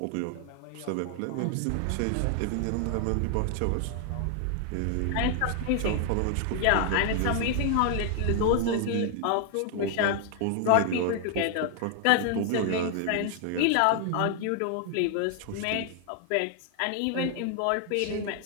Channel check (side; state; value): both; different; correlation 0.00